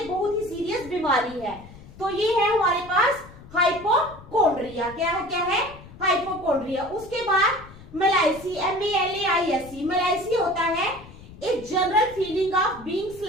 बहुत ही सीरियस बीमारी है। तो ये है हमारे पास हाइपोकॉन्ड्रिया। क्या है? हाइपोकॉन्ड्रिया। उसके बाद मेलाइसी, MALAISE, मेलाइसी होता है एक general feeling of being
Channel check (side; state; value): left; noise; rumble, 18 dB below the sound